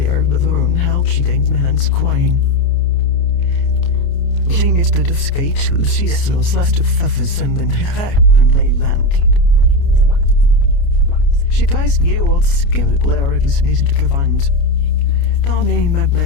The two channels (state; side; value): late; right; 29 ms